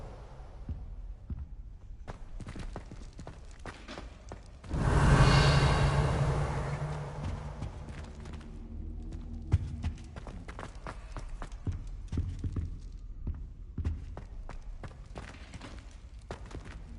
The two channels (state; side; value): identical; both; correlation 1.00